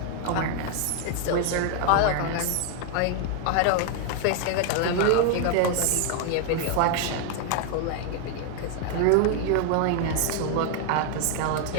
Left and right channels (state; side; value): different; both; correlation 0.00